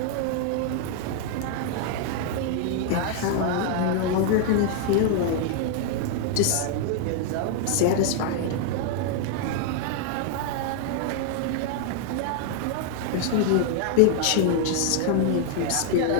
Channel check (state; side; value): different; both; correlation 0.00